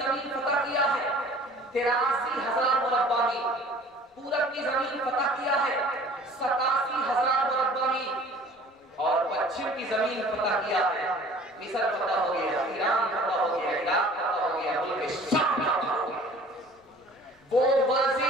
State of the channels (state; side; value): normal; both; correlation 0.49